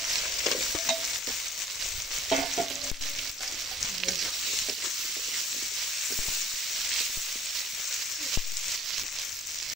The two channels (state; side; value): normal; both; correlation 0.55